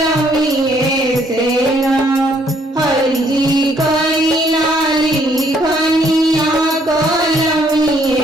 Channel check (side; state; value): both; normal; correlation 0.66